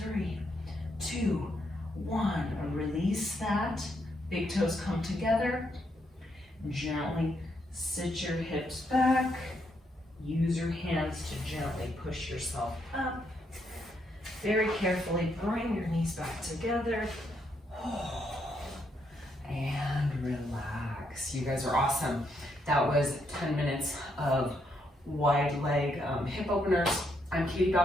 3, 2, 1. Release that. Big toes come together. Gently sit your hips back. Use your hands to gently push yourself up. Very carefully bring your knees back together. And relax. You guys are awesome. That was 10 minutes of wide leg hip openers. I'm Katie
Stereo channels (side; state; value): both; normal; correlation 0.77